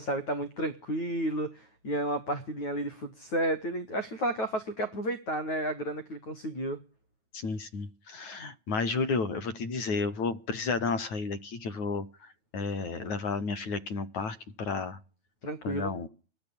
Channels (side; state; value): right; late; 9.3 ms